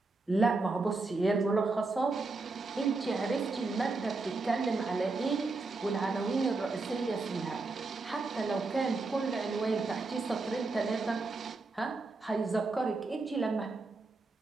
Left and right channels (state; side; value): quieter; left; 3.6 dB